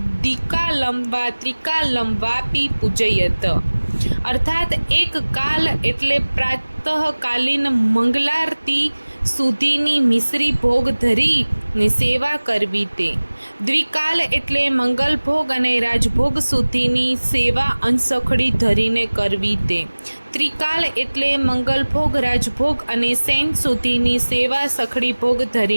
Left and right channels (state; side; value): inverted; both; correlation -1.00